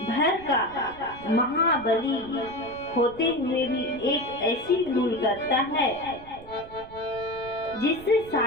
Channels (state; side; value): noise; right; rumble, 19 dB below the sound